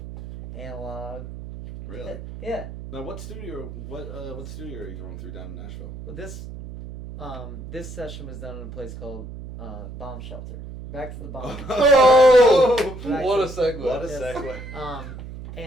analog. Really? Yeah. Now, what studio are you going through down in Nashville? Well, this session was done in a place called Bomb Shelter. back to the bomb. Oh, Back what a to- segue. What a Yes. segue.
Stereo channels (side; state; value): right; noise; hum, 11 dB below the sound